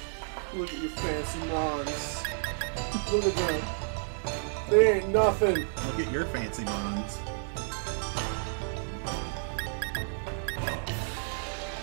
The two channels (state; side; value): silent; left; digital silence